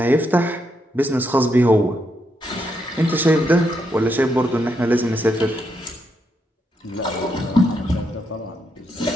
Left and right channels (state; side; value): normal; both; correlation 0.79